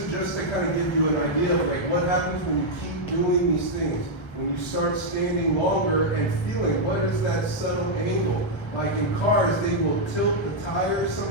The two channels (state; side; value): late; right; 1.2 ms